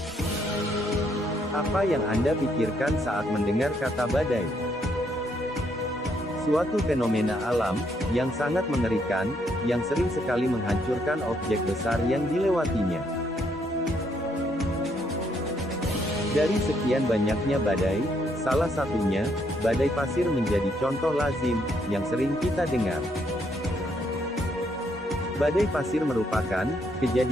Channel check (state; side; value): normal; both; correlation 0.72